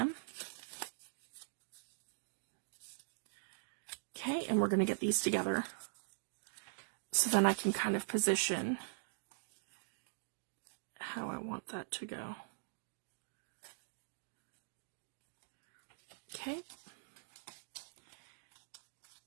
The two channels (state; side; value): silent; left; digital silence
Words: Okay, and we're going to get these together. So then I can kind of position how I want that to go. Okay.